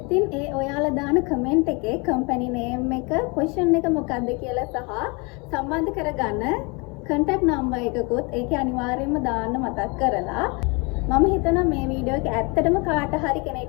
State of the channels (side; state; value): right; quieter; 29.8 dB